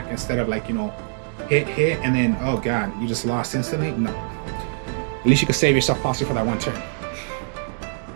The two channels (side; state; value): left; silent; digital silence